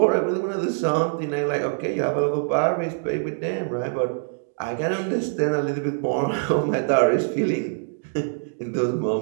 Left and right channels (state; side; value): silent; left; digital silence